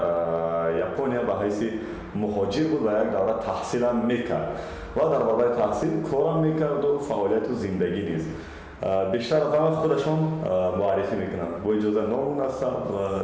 япония ба ҳайси муҳоҷир буд ва як давра таҳсилам мекард ва дар бораи таҳсил корам мекарду фаъолияту зиндагӣ низ. بیشتر از همه خودشون معرفی میکنن با اجازه نام نسب و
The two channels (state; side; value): identical; both; correlation 1.00